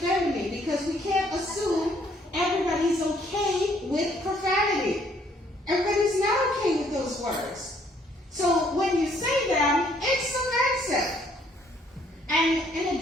me because we can't assume everybody's okay with profanity. Everybody's not okay with those words. So when you say them, it's offensive. And in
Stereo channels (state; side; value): normal; both; correlation 0.65